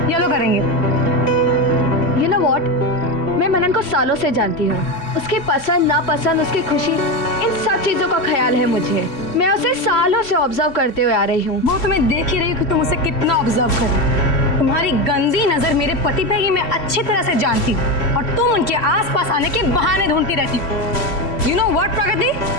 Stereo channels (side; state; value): right; late; 3.1 ms